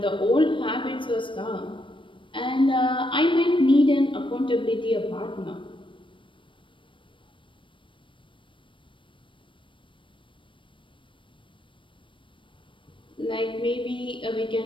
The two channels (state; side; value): late; right; 0.25 ms